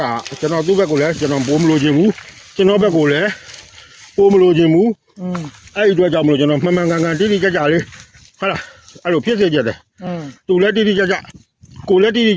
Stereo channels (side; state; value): both; identical; correlation 1.00